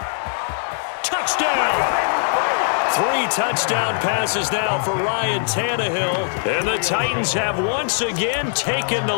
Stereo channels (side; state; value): right; silent; 57 dB below the other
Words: Touchdown! 3 touchdown passes now for Ryan Tannehill, and the Titans have once again taken the